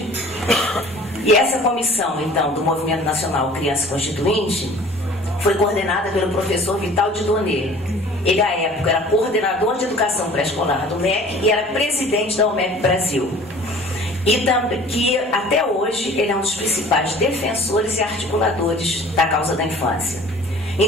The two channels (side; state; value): both; normal; correlation 0.48